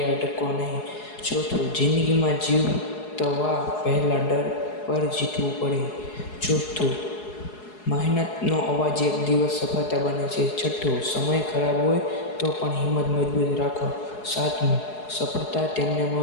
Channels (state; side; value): late; right; 4.7 ms